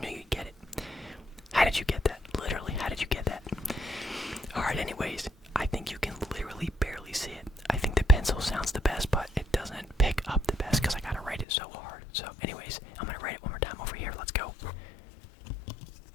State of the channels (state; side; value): drops out; right; at 11.5 s